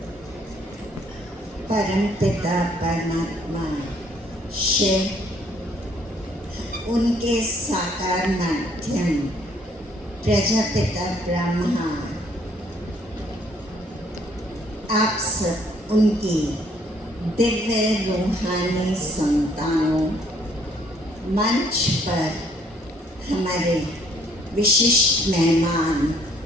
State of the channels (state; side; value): normal; both; correlation 0.64